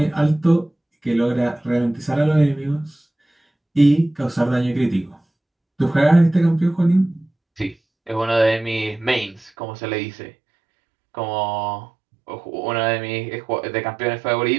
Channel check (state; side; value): drops out; left; at 9.5 s